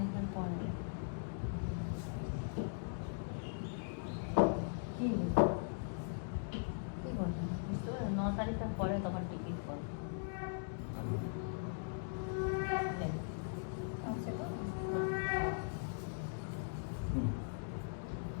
পরে কি কি বলবো বুঝতে পারো? 9 তারিখের পরে তখন টিকিট করবো।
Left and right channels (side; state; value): right; silent; digital silence